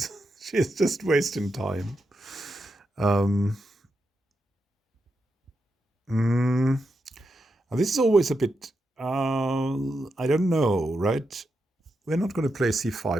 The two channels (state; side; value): normal; both; correlation 0.85